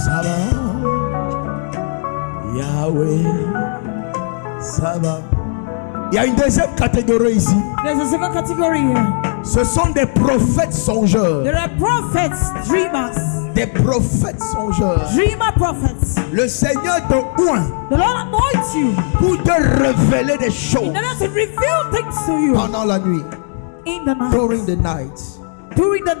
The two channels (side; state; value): right; silent; digital silence